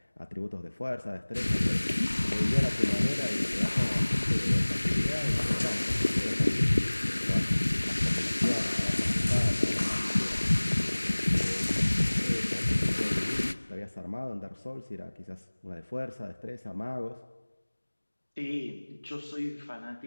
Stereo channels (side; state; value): both; inverted; correlation -1.00